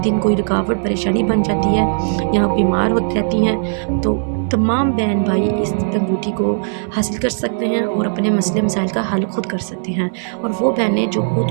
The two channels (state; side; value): silent; left; 61 dB below the other